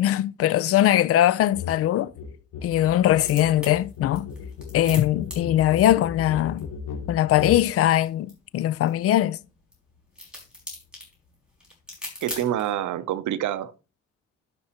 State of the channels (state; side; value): quieter; right; 9.6 dB